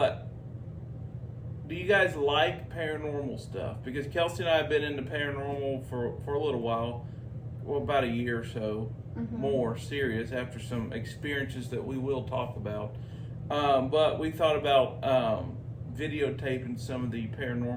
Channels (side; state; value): both; identical; correlation 1.00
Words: do you guys like paranormal stuff? Because Kelsey and I have been into paranormal for a little while, about a year or so, more serious after some experiences that we will talk about. But we thought about videotaping some of the